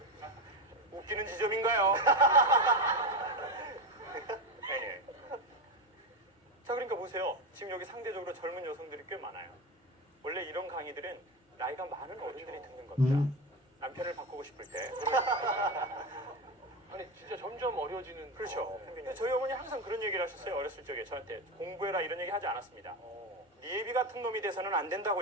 웃기는 지점인가요? 네. 자, 그러니까 보세요. 지금 여기 상대적으로 젊은 여성들이 꽤 많아요. 원래 이런 강의들은 나이가 많은 어른들이 듣는 겁니다. 남편을 바꾸고 싶을 때. 아니, 진짜 점점 어려지는. 그렇죠. 근데 저희 어머니 항상 그런 얘기를 하셨어요. 어렸을 적에 저한테 공부해라 이런 얘기 하지 않았습니다. 니애비 같은 놈이 돼서는 안 된다고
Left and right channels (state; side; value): normal; both; correlation 0.17